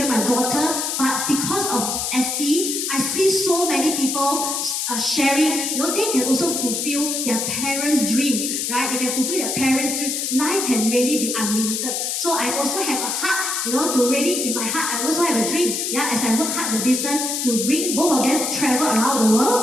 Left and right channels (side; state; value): left; noise; hiss, 1 dB below the sound